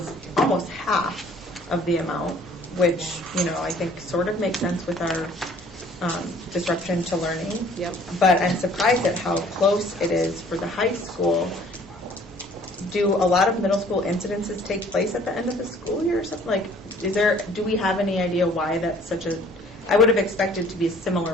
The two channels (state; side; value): normal; both; correlation 0.55